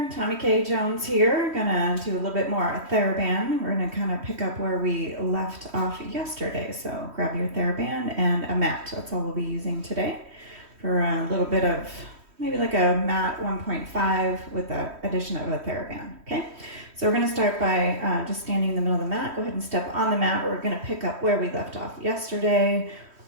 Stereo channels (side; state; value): left; late; 3.1 ms